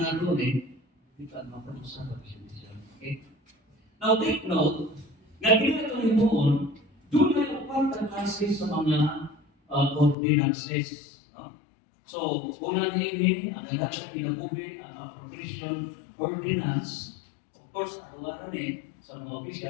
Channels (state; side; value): drops out; right; at 10.2 s